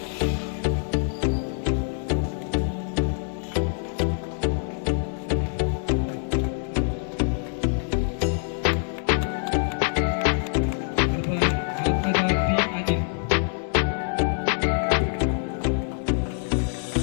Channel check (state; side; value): silent; right; digital silence